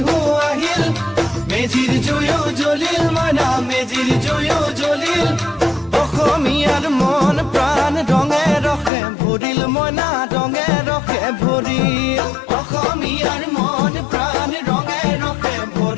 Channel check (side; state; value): right; drops out; at 8.9 s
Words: আহিল মেজিৰ জুয়ো জ্বলিল মইনা মেজিৰ জুয়ো জ্বলিল অসমীয়াৰ মন প্ৰাণ ৰঙে ৰসে ভৰিল মইনা ৰঙে ৰসে ভৰিল অসমীয়াৰ মন প্ৰাণ ৰঙে ৰসে